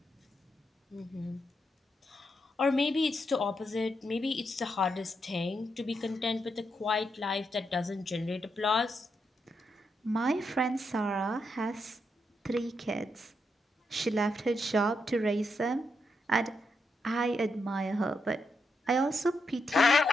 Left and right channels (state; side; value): normal; both; correlation 0.82